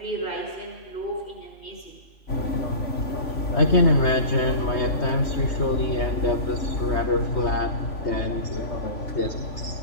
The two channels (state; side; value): late; right; 3.5 ms